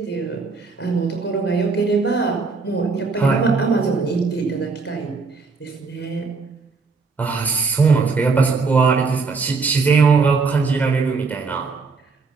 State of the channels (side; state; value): left; quieter; 4.5 dB